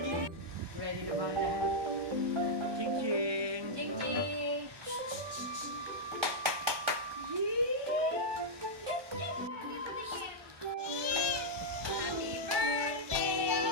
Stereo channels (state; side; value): late; left; 1.2 ms